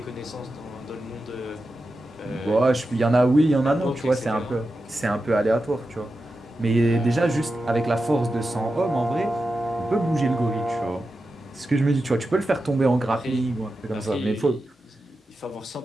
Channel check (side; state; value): both; normal; correlation 0.91